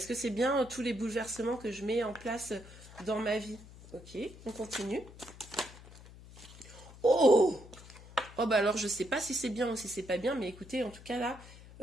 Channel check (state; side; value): noise; left; hum, 18 dB below the sound